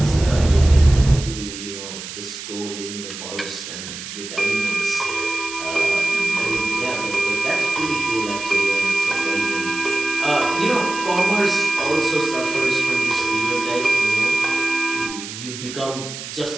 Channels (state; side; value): noise; right; hiss, 10 dB below the sound